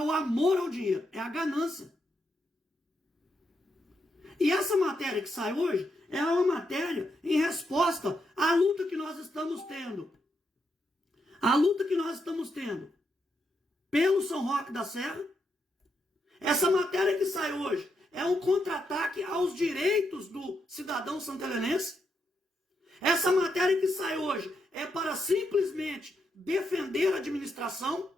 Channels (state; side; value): normal; both; correlation 0.81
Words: amor ao dinheiro, é a ganância. E essa matéria que sai hoje é uma matéria em resposta à luta que nós estamos tendo. A luta que nós estamos tendo pelo São Roque da Serra. Essa matéria que sai hoje é um contra-ataque aos direitos do cidadão santelenense. Essa matéria que sai hoje é para simplesmente defender a administração